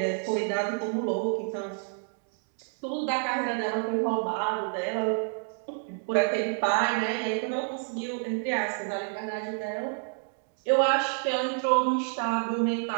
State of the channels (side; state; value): left; silent; 57 dB below the other